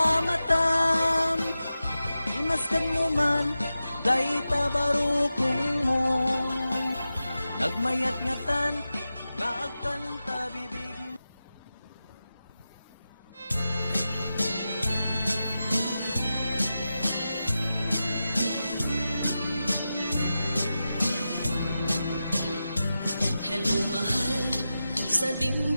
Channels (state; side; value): inverted; both; correlation -0.92